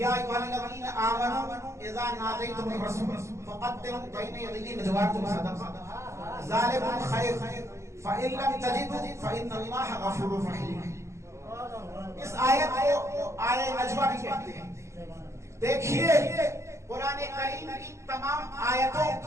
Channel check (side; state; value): left; late; 0.14 ms